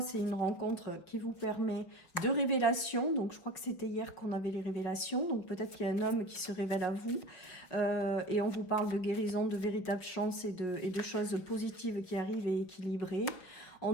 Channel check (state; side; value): late; right; 5.8 ms